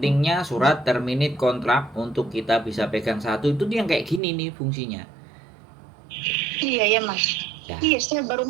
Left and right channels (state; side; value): drops out; left; at 4.2 s